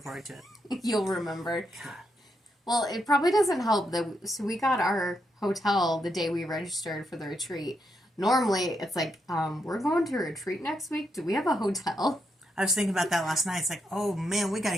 to it. You'll remember. Well, it probably doesn't help that. So we got our hotel the day we registered for the retreat. Normally, it's like, we're going to a retreat next week. Do we have a hotel? I was thinking about that last night. It's like, oh man, we got to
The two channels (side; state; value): both; normal; correlation 0.81